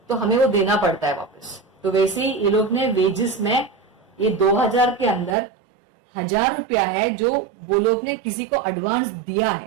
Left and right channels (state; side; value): drops out; left; at 5.4 s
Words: तो हमें वो देना पड़ता है वापस. तो वैसे ही ये लोग ने वेजेस में ये 2000 के अंदर 1000 रुपया है जो वो लोग ने किसी को एडवांस दिया